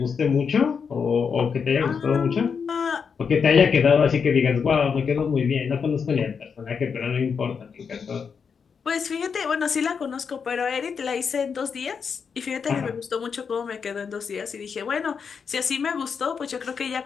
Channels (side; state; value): right; quieter; 6.2 dB